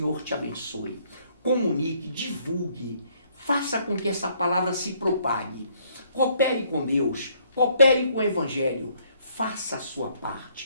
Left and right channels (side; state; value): both; inverted; correlation -0.66